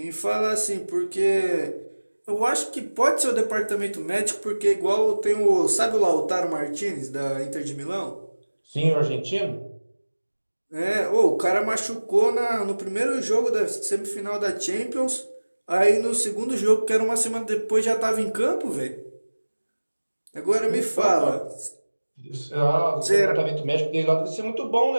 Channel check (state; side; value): inverted; both; correlation -1.00